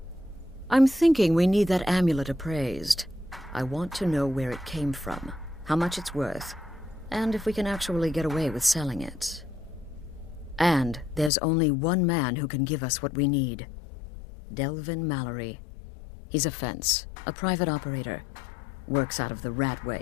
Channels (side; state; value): right; drops out; at 11.3 s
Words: thinking we need that amulet appraised. I want to know where it came from, how much it's worth, and if we can actually get away with selling it. And there's only one man who can give us what we need. Delvin Mallory. He's a fence, a private operator. Works out of the